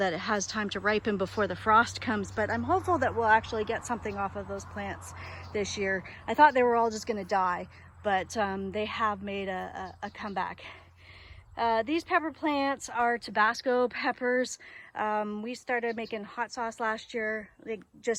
it has time to ripen before the frost comes, but I'm hopeful that we'll actually get something off of those plants this year. I thought they were all just going to die, but they have made a comeback. These pepper plants are Tabasco peppers. We started making hot sauce last year, like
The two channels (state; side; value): identical; both; correlation 1.00